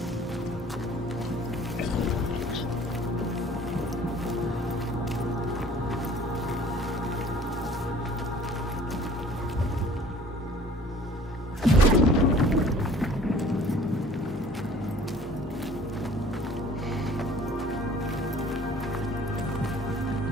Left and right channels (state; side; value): normal; both; correlation 0.51